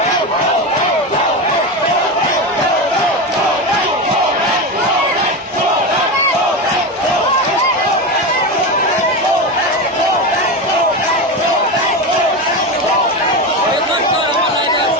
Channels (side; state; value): both; normal; correlation 0.18